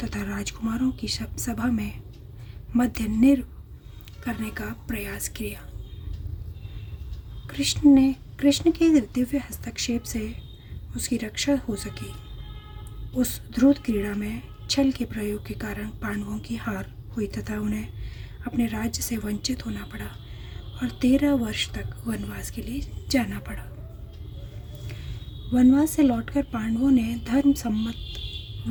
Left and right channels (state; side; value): identical; both; correlation 1.00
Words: तथा राजकुमारों की सभा में मध्य निर् करने का प्रयास किया। कृष्ण के दिव्य हस्तक्षेप से उसकी रक्षा हो सकी। उस द्रुत क्रीड़ा में छल के प्रयोग के कारण पांडवों की हार हुई तथा उन्हें अपने राज्य से वंचित होना पड़ा और 13 वर्ष तक वनवास के लिए जाना पड़ा। वनवास से लौटकर पांडवों ने धर्म सम्मत